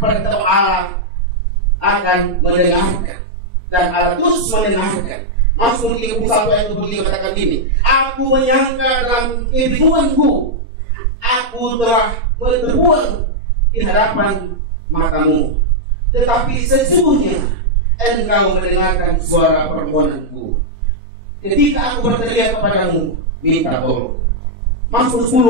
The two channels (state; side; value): late; left; 4.3 ms